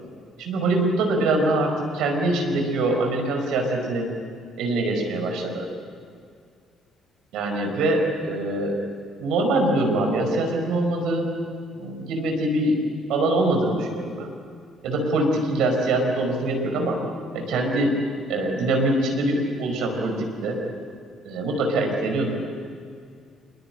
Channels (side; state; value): both; normal; correlation 0.59